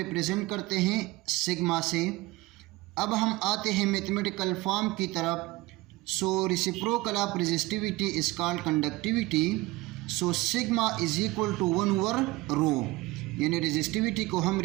करते हैं सिग्मा से। अब हम आते हैं मैथमेटिकल फॉर्म की तरफ। So reciprocal of resistivity is called conductivity. So sigma is equal to 1/रो, यानी रेजिस्टिविटी को हम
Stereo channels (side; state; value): left; quieter; 20.2 dB